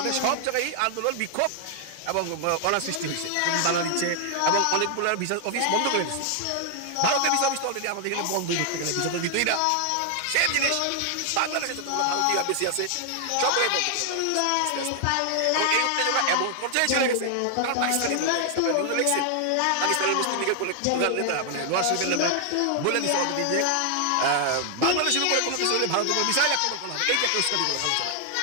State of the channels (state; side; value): different; both; correlation 0.00